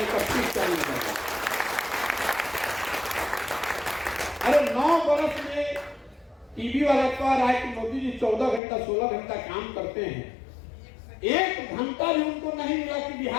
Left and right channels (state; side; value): drops out; right; at 8.6 s